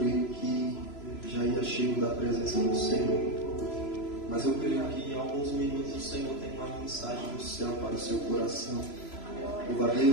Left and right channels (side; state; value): right; late; 3.0 ms